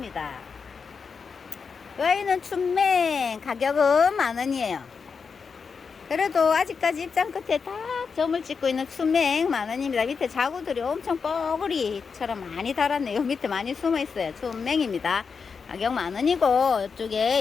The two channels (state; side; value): quieter; right; 5.5 dB